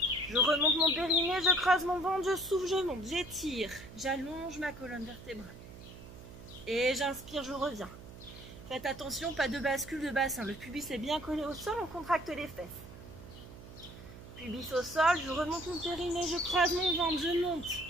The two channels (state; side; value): noise; right; hum, 16 dB below the sound